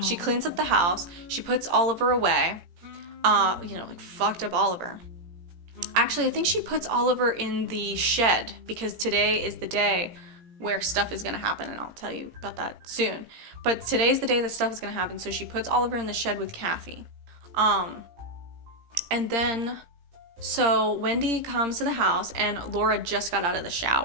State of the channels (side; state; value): left; late; 17 ms